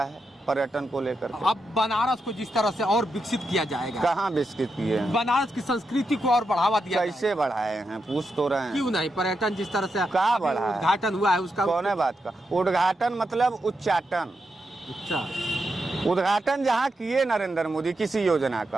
है पर्यटन को लेकर? अब बनारस को जिस तरह से और विकसित किया जाएगा, कहाँ विकसित किए हैं? बनारस की संस्कृति को और बढ़ावा दिया, कैसे बढ़ाए हैं पूछ तो रहे हैं? क्यों नहीं? पर्यटन जिस तरह से कहाँ बढ़ा है? उद्घाटन हुआ है उसका। कौन है बात का उद्घाटन? मतलब उच्चाटन। अच्छा, उद्घाटन जहाँ किए नरेंद्र मोदी किसी योजना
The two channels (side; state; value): both; normal; correlation 0.85